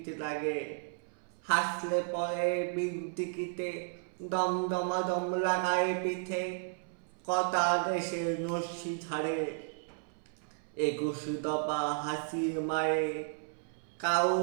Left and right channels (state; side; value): silent; left; 55 dB below the other